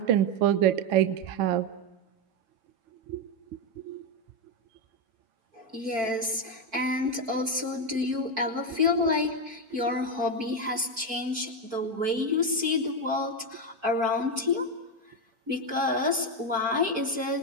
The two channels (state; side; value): late; left; 4.5 ms